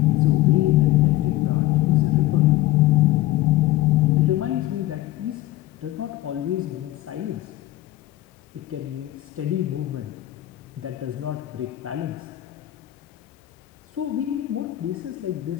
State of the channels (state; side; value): quieter; right; 15.7 dB